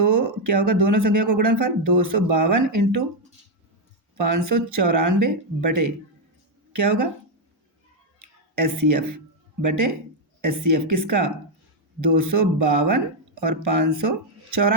क्या होगा, दोनों संख्याओं का गुणनफल 252 इंटू 594 बटे क्या होगा, HCF बटे HCF किसका, 252 और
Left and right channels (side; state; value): both; normal; correlation 0.02